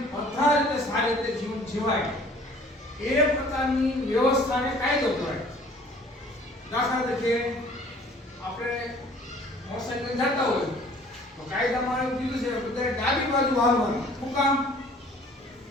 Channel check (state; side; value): normal; both; correlation 0.52